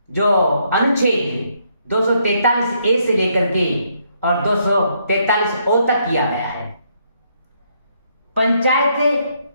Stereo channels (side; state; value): both; inverted; correlation -0.73